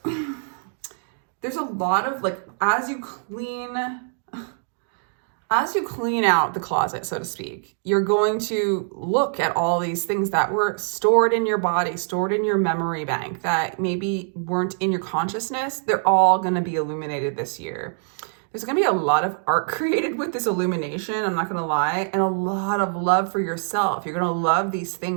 there's a lot of, like, as you clean out the closet, so to speak, you're going to look at all these things that were stored in your body, stored in your memory bank, that maybe weren't in your consciousness. They're all going to be illuminated this year. There's going to be a lot of art created with this illumination, I'm not going to lie, and a lot of love for yourself. You're going to love these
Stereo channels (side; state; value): left; silent; digital silence